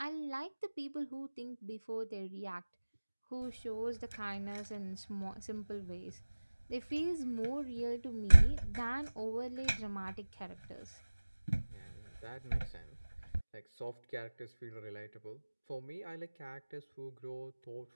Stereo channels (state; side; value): inverted; both; correlation -1.00